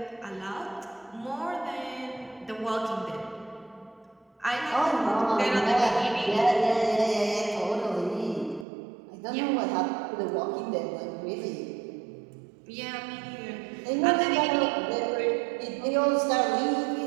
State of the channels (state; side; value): drops out; left; at 8.7 s